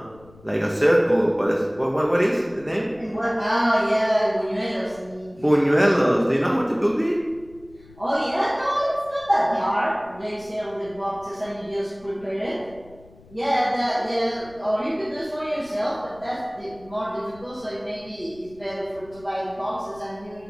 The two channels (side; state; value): left; noise; rumble, 24 dB below the sound